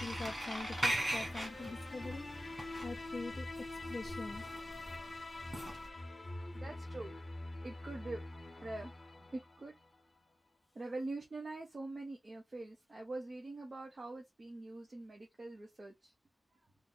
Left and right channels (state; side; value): normal; both; correlation 0.94